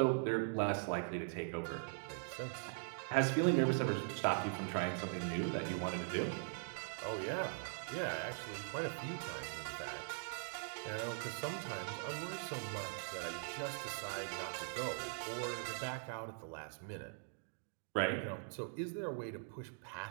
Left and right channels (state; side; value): silent; left; digital silence